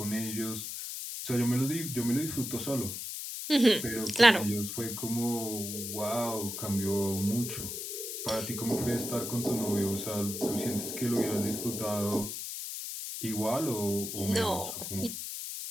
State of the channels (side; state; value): left; noise; hiss, 6 dB below the sound